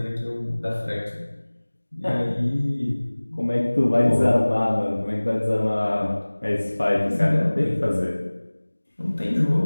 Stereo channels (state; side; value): inverted; both; correlation -1.00